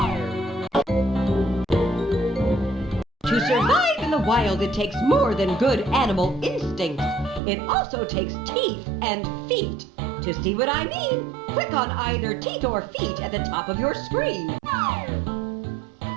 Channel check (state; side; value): drops out; left; at 7.4 s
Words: To survive in the wild, it takes more than good animal instincts. It also takes teeth and feet. To see what I mean, click on either teeth or feet at the top of your screen.